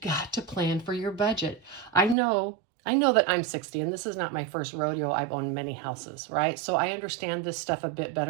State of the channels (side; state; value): left; drops out; at 2.1 s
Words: to plan for your budget. I know that I'm 60 and this is not my first rodeo. I've owned many houses, right? So I understand this stuff a bit